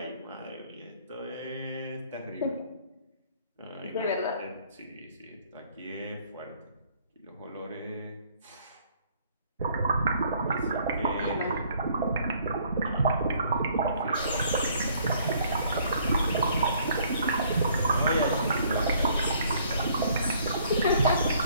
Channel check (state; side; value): inverted; both; correlation -0.62